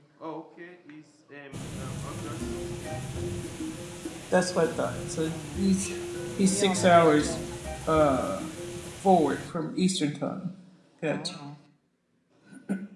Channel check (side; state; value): both; identical; correlation 1.00